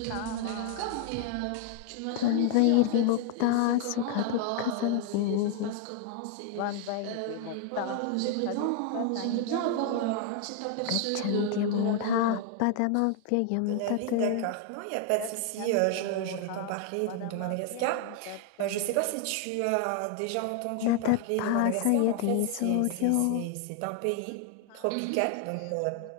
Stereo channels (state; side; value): different; both; correlation 0.00